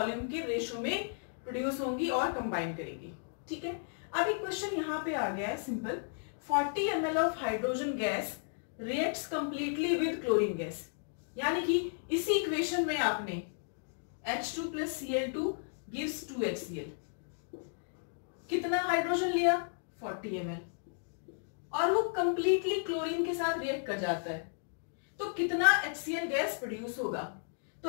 के रेशो में प्रोड्यूस होंगी और कंबाइन करेंगी. ठीक है, अब एक क्वेश्चन यहाँ पे आ गया है simple. 40 ml of hydrogen gas reacts completely with chlorine gas, यानी कि इसी इक्वेशन में आपने H2 plus Cl2 gives 2HCl. कितना हाइड्रोजन लिया, 40 ml, और वो कंप्लीटली क्लोरीन के साथ रिएक्ट कर जाता है, तो कितना HCl गैस प्रोड्यूस होगा. तो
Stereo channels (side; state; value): right; silent; digital silence